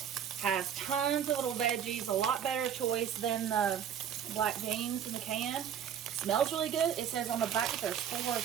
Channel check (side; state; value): left; quieter; 8.9 dB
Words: has tons of little veggies, a lot better choice than the black beans in the can. It smells really good. It says on the back that there's 4